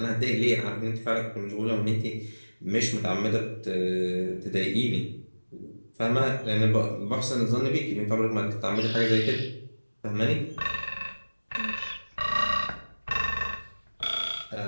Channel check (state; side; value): inverted; both; correlation -1.00